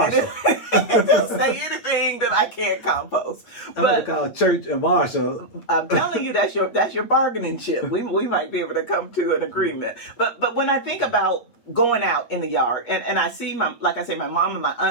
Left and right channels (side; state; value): right; late; 8.4 ms